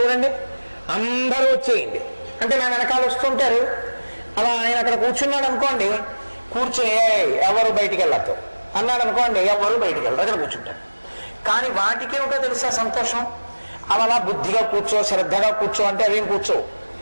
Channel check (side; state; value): both; inverted; correlation -1.00